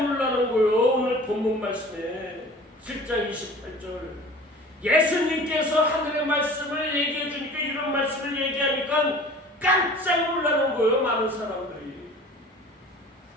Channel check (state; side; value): normal; both; correlation 0.44